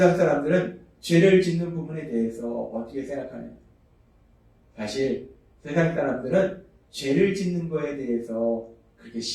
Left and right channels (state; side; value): identical; both; correlation 1.00